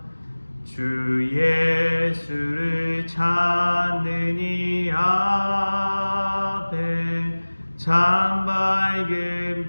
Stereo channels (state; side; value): inverted; both; correlation -1.00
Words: 주 예수를 찾는 이 앞에 참 밝은